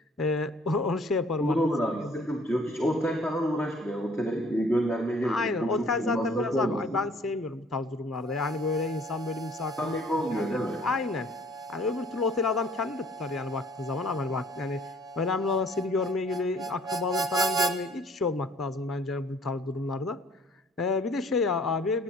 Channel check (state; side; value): normal; both; correlation 0.56